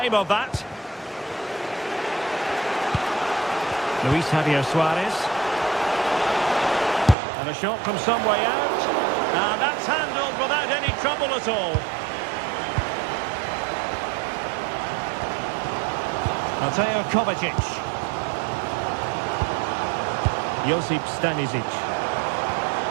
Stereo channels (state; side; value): drops out; left; at 7.2 s